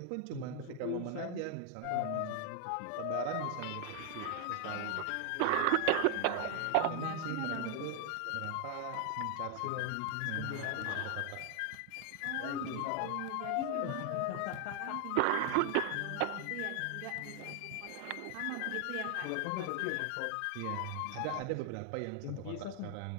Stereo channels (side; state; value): both; different; correlation 0.00